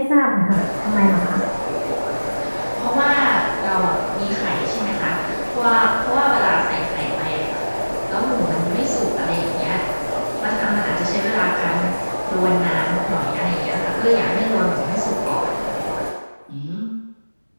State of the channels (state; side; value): inverted; both; correlation -1.00